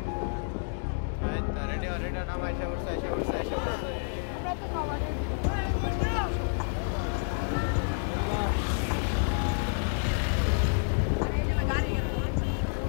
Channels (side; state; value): right; silent; digital silence